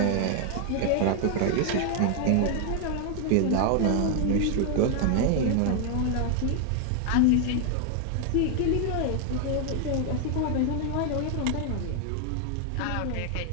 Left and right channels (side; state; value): both; different; correlation 0.00